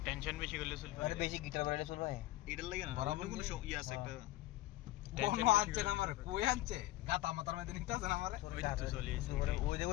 টেনশন বেশি করলে চুল আরে বেশি গিটার বাজালে চুল ভাই এটার লাগে না বরাবর কোনো ইয়ে আছে একটা কোন আনছে না আমারে কই আনছে গাতা মাথার মধ্যে নিতে আছে না আমারে ওই তো চলে এসে ওই দেখো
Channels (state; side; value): quieter; right; 16.6 dB